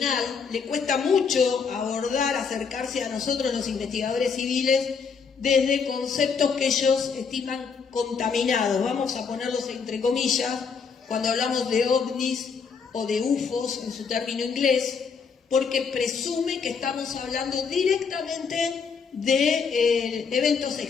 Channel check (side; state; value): right; quieter; 5.8 dB